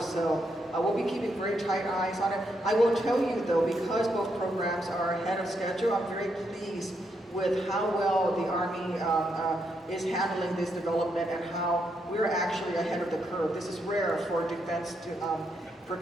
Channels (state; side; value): normal; both; correlation 0.79